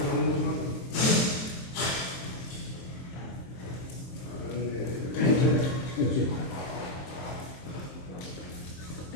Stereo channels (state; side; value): late; right; 23 ms